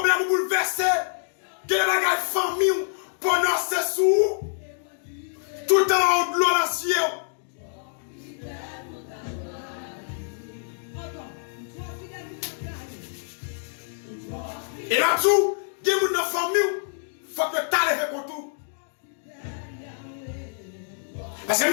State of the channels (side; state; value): right; silent; digital silence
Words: bouleversés, des bagailles famille, pendant ces sous, tout en haut de l'eau dans le ciel. Et là-dessous, des gens dans la famille, il faut que tu ailles avec tout. Parce que